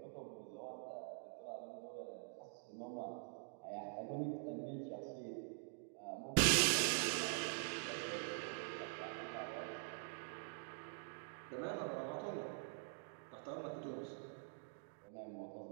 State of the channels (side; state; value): left; silent; digital silence